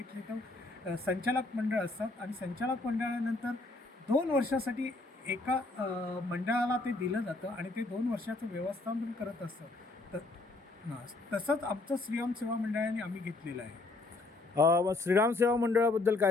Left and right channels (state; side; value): quieter; right; 3.2 dB